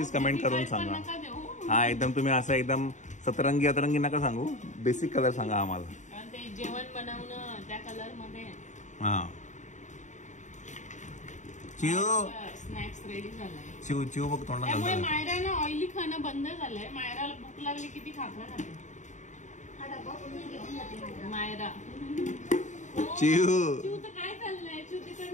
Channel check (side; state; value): right; late; 0.35 ms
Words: कमेंट करून सांगा. हा एकदम तुम्ही असं एकदम सतरंगी अतरंगी नका सांगू. बेसिक कलर सांगा आम्हाला. जेवण बनवणं त्या कलर मध्ये. हा स्नॅक्स रेडी झालाय. चिव बघ तोंडात घालतो. त्यामुळे मायरानं ऑइली खाणं बंद झालंय. मायराला भूक लागली किती खाकरा खाते मायरा. चिव तर काय चाललंय? चिव